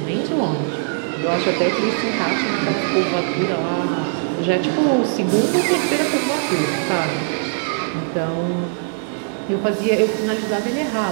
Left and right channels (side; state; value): left; silent; 65 dB below the other